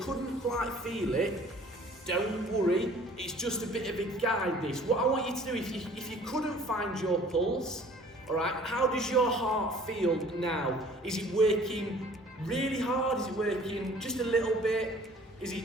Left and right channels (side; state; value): both; normal; correlation 0.52